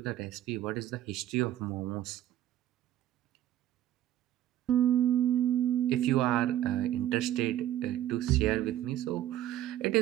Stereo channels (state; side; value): quieter; left; 12.6 dB